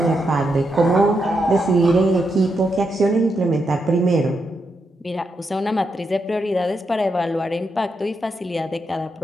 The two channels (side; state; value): both; normal; correlation 0.83